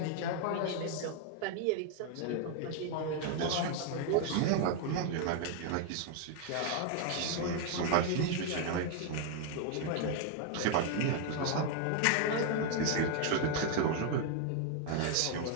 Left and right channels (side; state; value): both; different; correlation 0.00